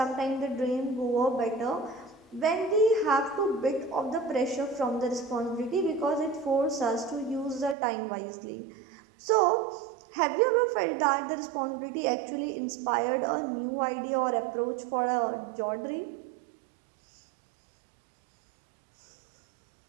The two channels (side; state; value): left; drops out; at 7.8 s